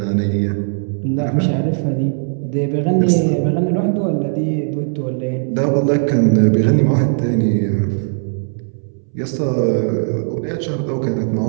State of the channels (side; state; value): left; silent; 67 dB below the other